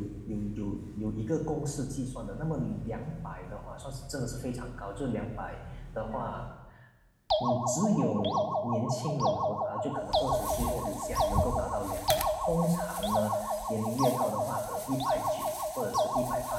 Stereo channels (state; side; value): identical; both; correlation 1.00